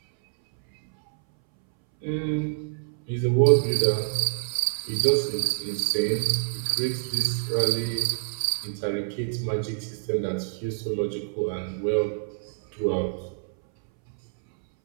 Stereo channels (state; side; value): silent; left; 61 dB below the other